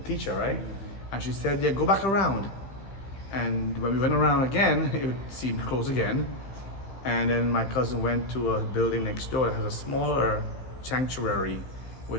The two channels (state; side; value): late; right; 15 ms